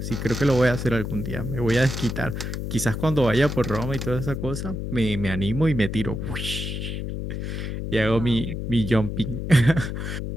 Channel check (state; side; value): noise; left; hum, 4 dB below the sound